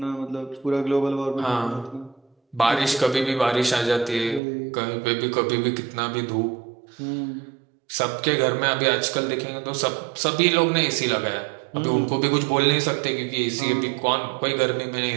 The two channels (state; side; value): drops out; left; at 4.4 s